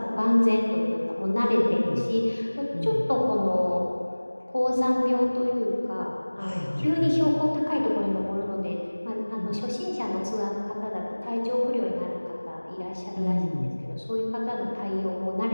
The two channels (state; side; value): inverted; both; correlation -1.00